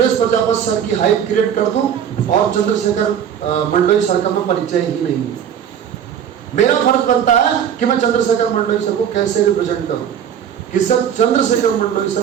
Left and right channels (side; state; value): left; quieter; 8.8 dB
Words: प्रजापति सर की हाइप क्रिएट कर दूं और चंद्रशेखर मंडोई सर का मैं परिचय ही नहीं हूं। मेरा फर्ज बनता है कि मैं चंद्रशेखर मंडोई सर को कैसे रिप्रेजेंट करूं, कि सर चंद्रशेखर मंडोई